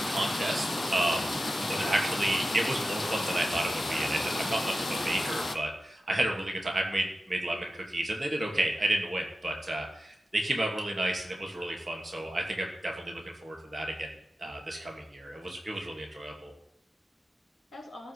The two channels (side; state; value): both; normal; correlation 0.93